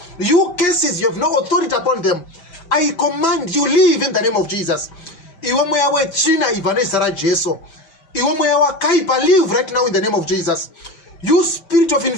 You curses, you have no authority upon them. I command you, leave in the name of Jesus. Iwe mweya wechina ivanesa raJesu. Iwe mweya wakaipa, leave right now in the name of Jesus. You spirit of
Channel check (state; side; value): late; right; 5.1 ms